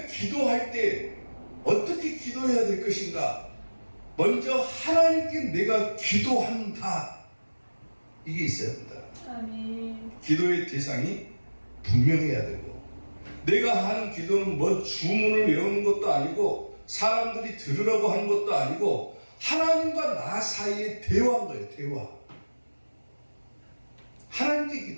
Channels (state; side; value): inverted; both; correlation -1.00